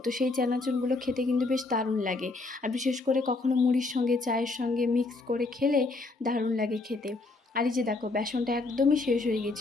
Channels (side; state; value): right; quieter; 3.4 dB